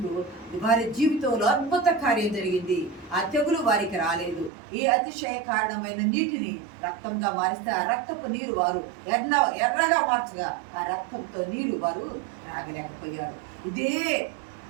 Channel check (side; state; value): left; drops out; at 4.5 s